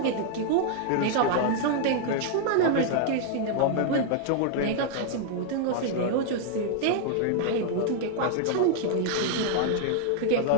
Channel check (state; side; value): different; both; correlation 0.00